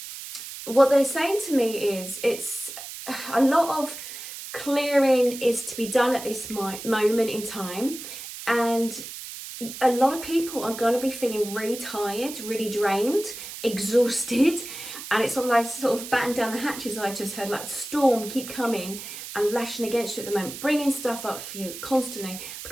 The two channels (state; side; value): noise; right; hiss, 10 dB below the sound